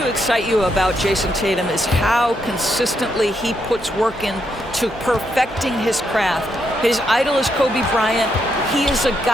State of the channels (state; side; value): normal; both; correlation 0.79